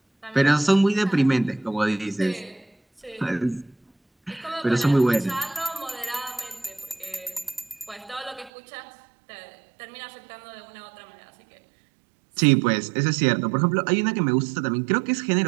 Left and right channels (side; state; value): left; drops out; at 8.5 s